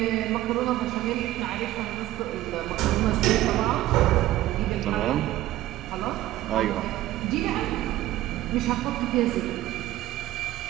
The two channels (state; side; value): quieter; left; 15.1 dB